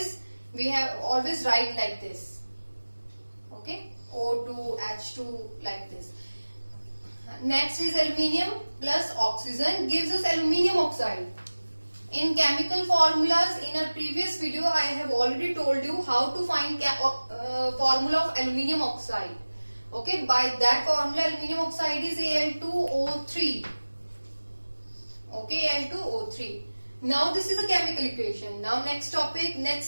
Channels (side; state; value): both; inverted; correlation -1.00